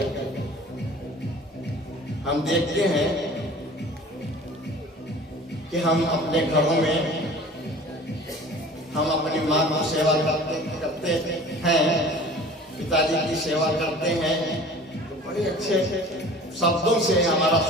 हम देखते हैं कि हम अपने घरों में हम अपनी माँ की सेवा करते हैं, पिताजी की सेवा करते हैं, तो बड़े अच्छे शब्दों से हमारा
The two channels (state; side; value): normal; both; correlation 0.44